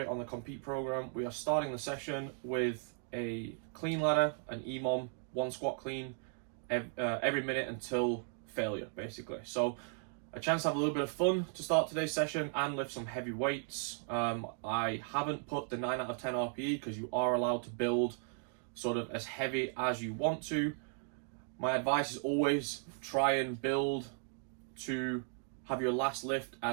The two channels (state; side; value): silent; left; 54 dB below the other